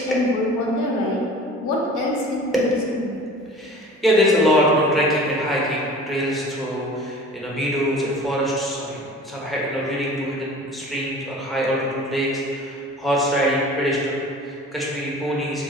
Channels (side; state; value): both; normal; correlation 0.43